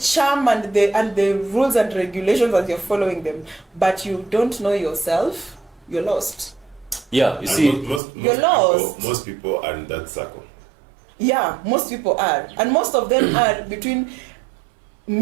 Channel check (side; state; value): left; drops out; at 8.0 s